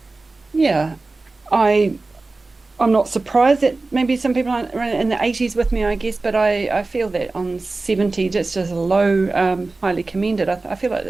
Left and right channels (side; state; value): left; quieter; 3.4 dB